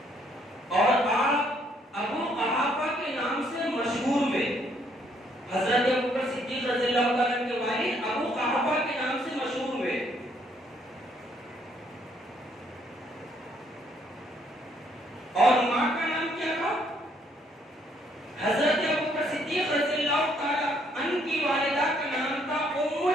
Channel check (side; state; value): both; normal; correlation 0.68